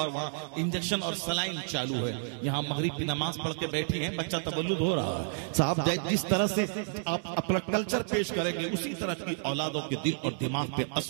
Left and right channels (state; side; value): silent; left; digital silence